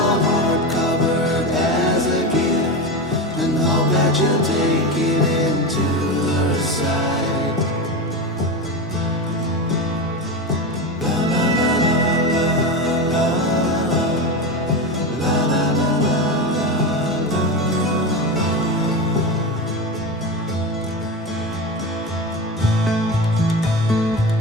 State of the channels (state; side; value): normal; both; correlation 0.21